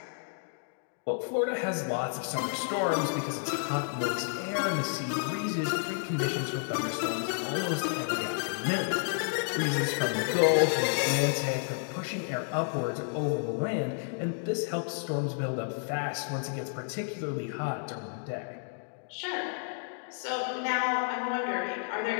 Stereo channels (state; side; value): silent; right; 57 dB below the other